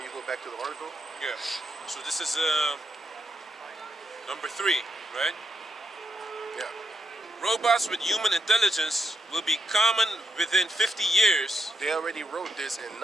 you go back to the article? Yeah. So this is number 3, right? Yeah. Robots with human intelligence will be common within 50 years. They already wrote this in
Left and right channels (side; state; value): both; normal; correlation 0.80